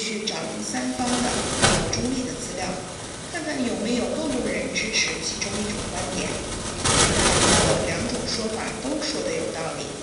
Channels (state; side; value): identical; both; correlation 1.00